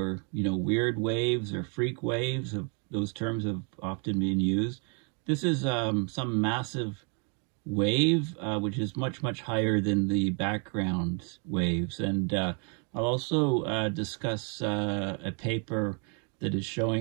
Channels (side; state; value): left; quieter; 37.3 dB